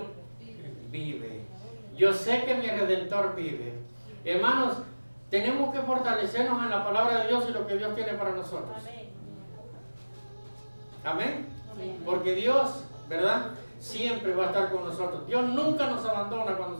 vive. Yo sé que mi Redentor vive. Hermanos, tenemos que fortalecernos en la palabra de Dios y lo que Dios tiene para nosotros. Amén. Amén. Porque Dios, ¿verdad?, siempre va a estar con nosotros. Dios nunca nos abandona cuando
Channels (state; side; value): inverted; both; correlation -1.00